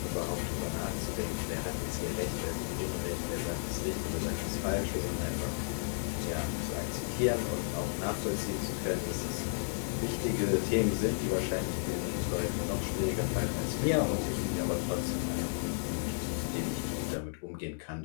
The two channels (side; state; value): right; silent; 56 dB below the other